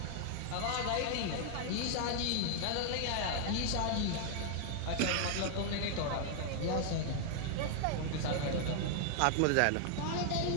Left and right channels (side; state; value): both; different; correlation 0.00